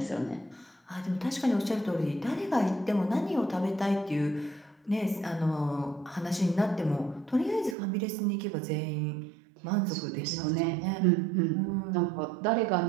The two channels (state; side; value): drops out; left; at 7.8 s